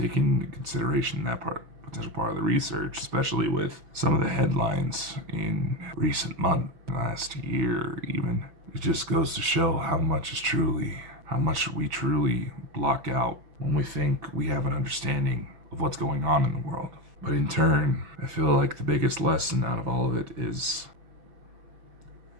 into consideration that potential part of the research, especially with some of the headlines in recent months, last year even, it just goes to show how much we truly block out when we think we have an understanding of what's going on in the world. But in turn, I feel like the biggest lesson out of all of it is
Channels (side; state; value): left; late; 6.0 ms